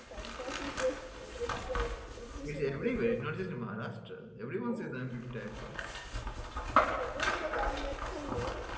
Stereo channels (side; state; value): both; identical; correlation 1.00